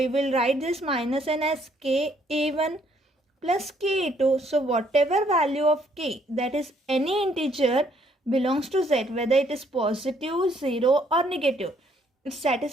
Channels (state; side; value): normal; both; correlation 0.67